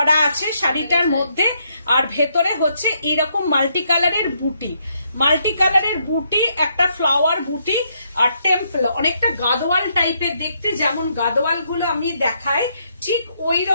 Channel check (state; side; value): inverted; both; correlation -0.75